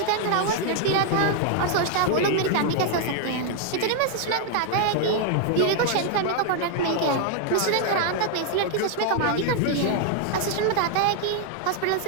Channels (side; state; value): both; different; correlation 0.00